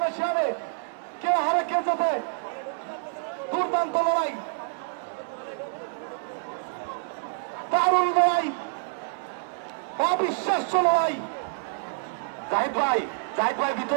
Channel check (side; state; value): left; silent; digital silence